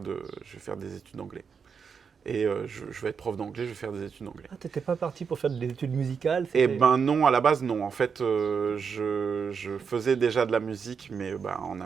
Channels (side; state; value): left; quieter; 6.2 dB